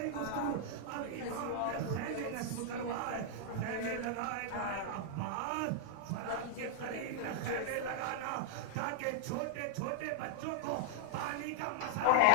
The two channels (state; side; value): different; both; correlation -0.01